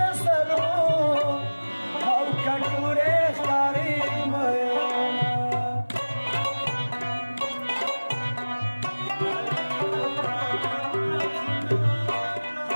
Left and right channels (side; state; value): both; inverted; correlation -1.00